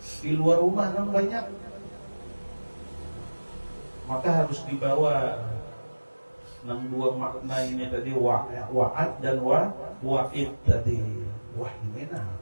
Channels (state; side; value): inverted; both; correlation -1.00